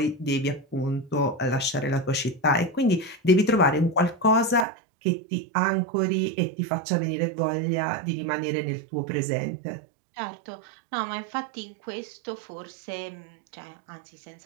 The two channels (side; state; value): left; drops out; at 4.7 s